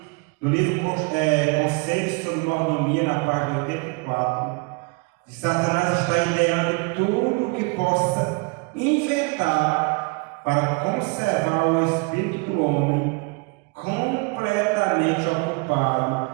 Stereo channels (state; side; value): quieter; left; 30.8 dB